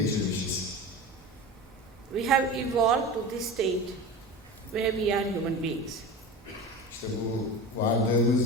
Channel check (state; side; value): normal; both; correlation 0.31